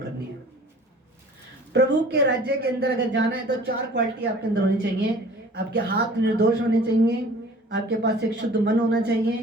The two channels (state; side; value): normal; both; correlation 0.48